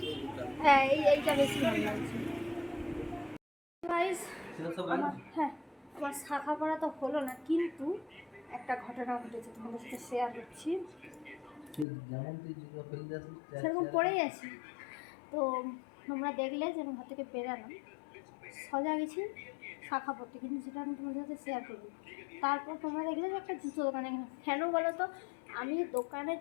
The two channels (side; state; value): right; drops out; at 11.9 s